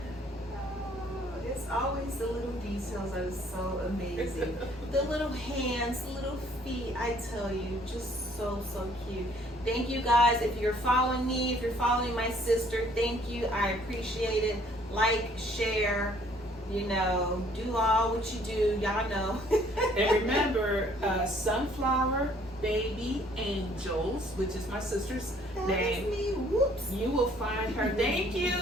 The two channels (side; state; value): both; normal; correlation 0.61